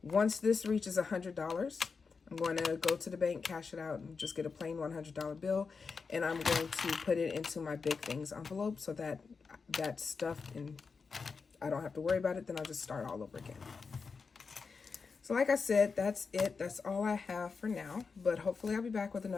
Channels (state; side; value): quieter; right; 5.0 dB